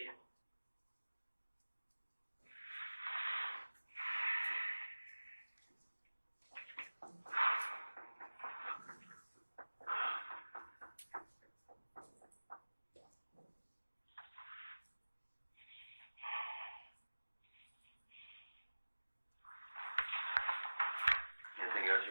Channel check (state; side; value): inverted; both; correlation -1.00